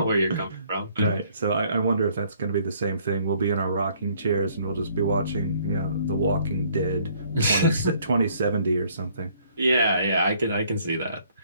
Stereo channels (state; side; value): inverted; both; correlation -0.62